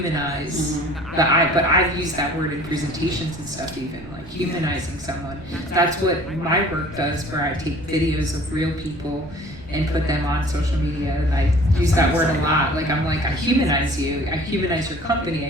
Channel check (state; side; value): noise; right; rumble, 21 dB below the sound